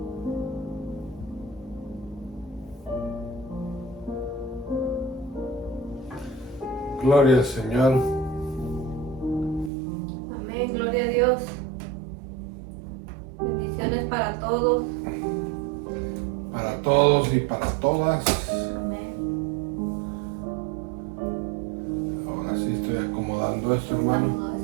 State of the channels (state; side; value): drops out; left; at 9.7 s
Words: Gloria al Señor. Amén, gloria a Dios. Bendiciones para todos. Para todos y para todas. Amén. Ahora sí estoy acomodando esto, hermano.